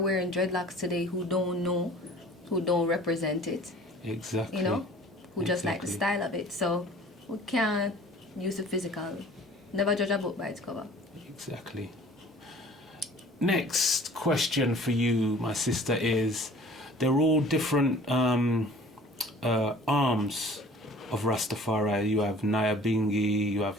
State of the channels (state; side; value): normal; both; correlation 0.48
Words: wearing dreadlocks today who don't know, who don't represent it. Exactly. Who just like the style of it. So we can't use the physical. Never judge a book by its cover. Exactly. Next question for you, my sister, is they're all different arms of Rastafari. You have Nyabingi, you